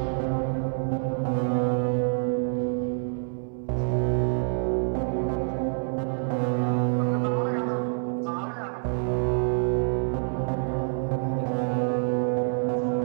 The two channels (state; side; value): silent; left; 60 dB below the other